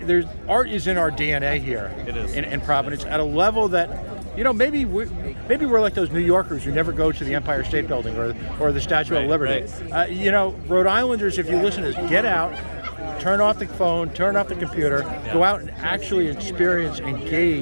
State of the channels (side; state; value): both; inverted; correlation -1.00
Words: art is in our DNA here. It is. In Providence at a level that maybe we're like those New Yorkers who never go to the Empire State Building or the Statue of Liberty. Right. Rhode Islanders, if you listen to this, get out, turn off the phone, turn off the computer, go out and actually experience,